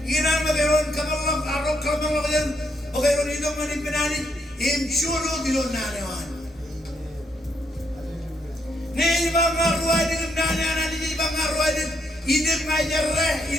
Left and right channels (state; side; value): normal; both; correlation 0.75